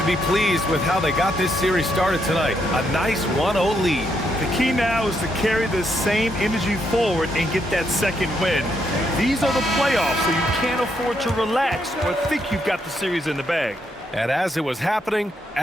be pleased with how they got this series started tonight. A nice 1-0 lead. The key now is to carry this same energy forward and get that second win. These are the playoffs, so you can't afford to relax or think you've got the series in the bag. And as it was happening,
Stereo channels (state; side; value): normal; both; correlation 0.77